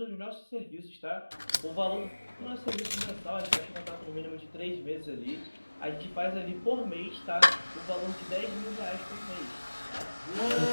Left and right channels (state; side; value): inverted; both; correlation -1.00